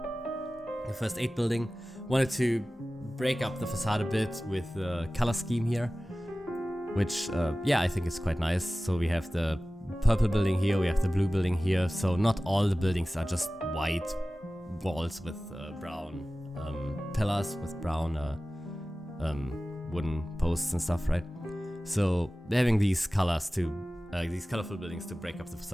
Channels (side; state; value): both; normal; correlation 0.96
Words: first 8 building. Wanted to break up the facade a bit with the color scheme here, which, yeah, I think is quite nice. So we have the purple building here, we have the blue building here. So not all the buildings are just white walls with brown pillars, with brown wooden posts and stuff, right? So having these colors these colorful buildings to break up the